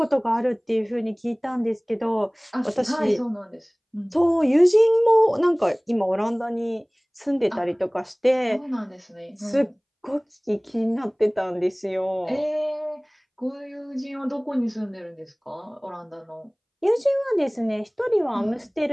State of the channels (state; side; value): identical; both; correlation 1.00